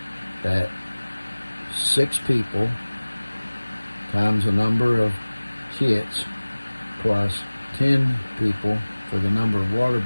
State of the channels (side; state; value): both; inverted; correlation -1.00